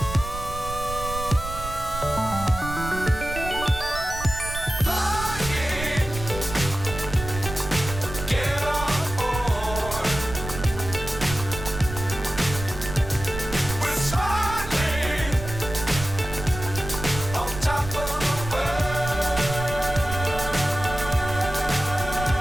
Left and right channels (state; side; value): noise; right; rumble, 9 dB below the sound